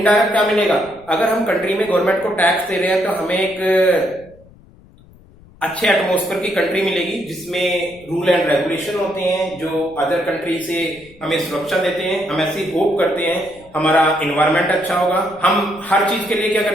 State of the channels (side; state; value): left; noise; rumble, 25 dB below the sound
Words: क्या मिलेगा? अगर हम कंट्री में गवर्नमेंट को टैक्स दे रहे हैं तो हमें एक अच्छे एटमॉस्फेयर की कंट्री मिलेगी जिसमें रूल एंड रेगुलेशन होते हैं जो अदर कंट्री से हमें सुरक्षा देते हैं। हम ऐसी होप करते हैं हमारा एनवायरमेंट अच्छा होगा। हम हर चीज के लिए क्या